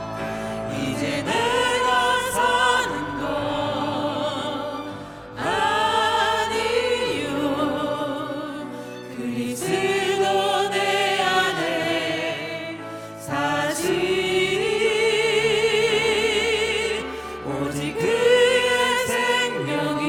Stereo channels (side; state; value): both; identical; correlation 1.00